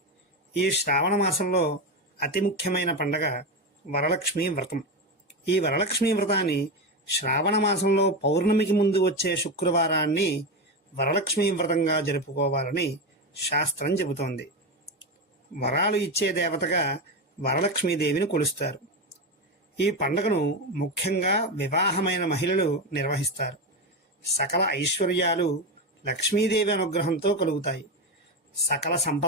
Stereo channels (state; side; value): normal; both; correlation 0.15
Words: ఈ శ్రావణ మాసంలో అతి ముఖ్యమైన పండగ వరలక్ష్మి వ్రతం. ఈ వరలక్ష్మి వ్రతాన్ని శ్రావణ మాసంలో పౌర్ణమికి ముందు వచ్చే శుక్రవారాన్ని వరలక్ష్మి వ్రతంగా జరుపుకోవాలని శాస్త్రం చెబుతోంది. వరాలు ఇచ్చే దేవతగా వరలక్ష్మీదేవిని కొలుస్తారు. ఈ పండుగను ముఖ్యంగా వివాహమైన మహిళలు నిర్వహిస్తారు. సకల ఐశ్వర్యాలు లక్ష్మీదేవి అనుగ్రహంతో కలుగుతాయి. సకల